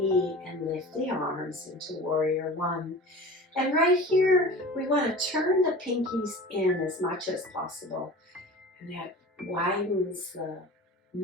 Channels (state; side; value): normal; both; correlation 0.37